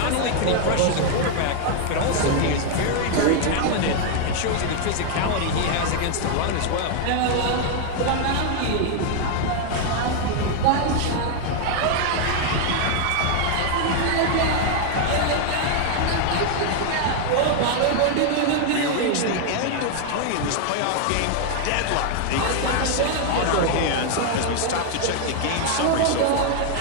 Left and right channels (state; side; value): different; both; correlation 0.00